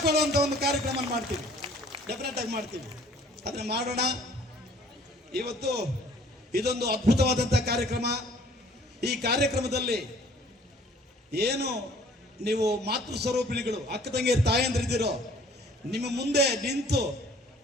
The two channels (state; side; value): normal; both; correlation 0.55